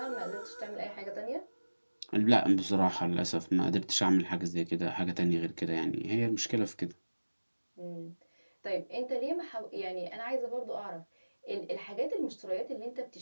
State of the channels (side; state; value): both; inverted; correlation -1.00